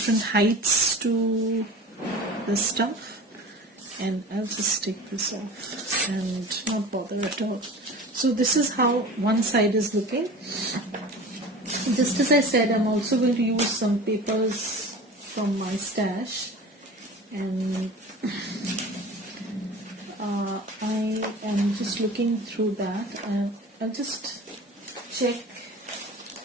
heights to the stuff, and I'll just take this off and not bother at all. So this is how one side is looking. Just as I said, I'm also going to use some papers from my stash, and I am just looking through that, and I'll just check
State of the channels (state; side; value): normal; both; correlation 0.36